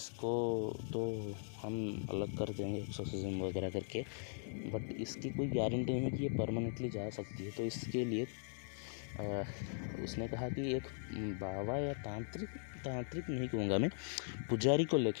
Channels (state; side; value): silent; right; digital silence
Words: तो हम अलग कर देंगे एक्सोर्सिज्म वगैरह करके, बट इसकी कोई गारंटी नहीं कि ये परमानेंटली जा सकती है। तो इसके लिए उसने कहा कि एक बाबा या तांत्रिक नहीं कहूँगा मैं, पुजारी को